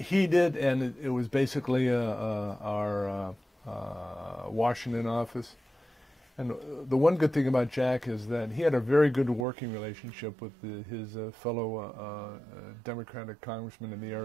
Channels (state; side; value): drops out; left; at 9.5 s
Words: did, and it was basically our Washington office. And the one good thing about Jack is that he had a very good working relationship with his fellow Democratic congressmen in the